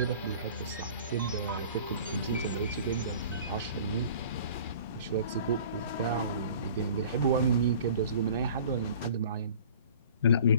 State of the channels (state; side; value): inverted; both; correlation -0.46